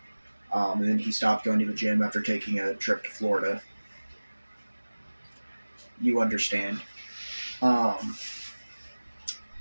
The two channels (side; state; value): both; inverted; correlation -1.00